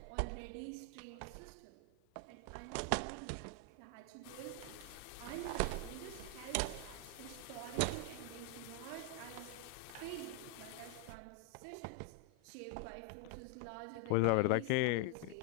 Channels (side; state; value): both; different; correlation 0.00